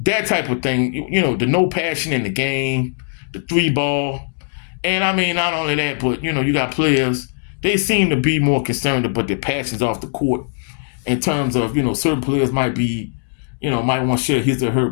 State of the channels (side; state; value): right; silent; digital silence